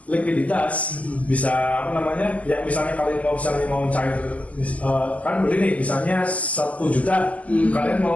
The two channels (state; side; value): late; right; 0.071 ms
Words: likuiditas, bisa apa namanya? Ya misalnya kalian mau cair kan beli nih misalnya 1 juta, kalian